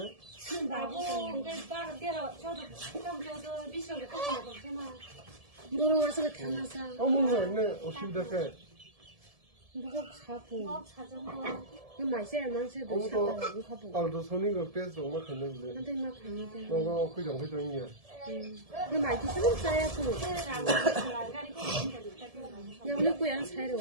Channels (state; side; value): late; left; 1.7 ms